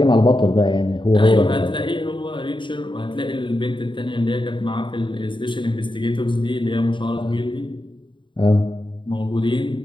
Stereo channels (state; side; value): late; right; 0.23 ms